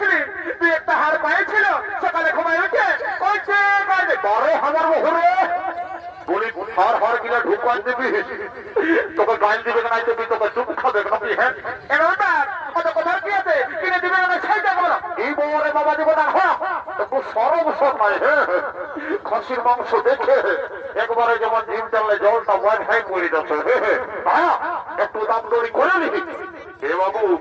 তুই একটা হার পাইছিল সকালে ঘুমায় উঠে বারে আমার বহুরে বলি হার হার গিলা ঢুকান দিবি, তোকে গাইল দিবে না দিবি, তোকে চুপ খাবে নাকি? হ্যাঁ এবার কত কথা কি আছে, কিনে দিবে না সেইটা বলো। এই বউরে বাবা দিব না, হ্যাঁ একটু সরব সব নাই। হ্যাঁ খাসির মাংস দেখে একবারে যেমন জিম চাললে জলটা ওয়াইন হাই করে যাচ্ছে। হ্যাঁ একটু দাম দড়ি করে নিবি। এ বাবু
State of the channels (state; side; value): identical; both; correlation 1.00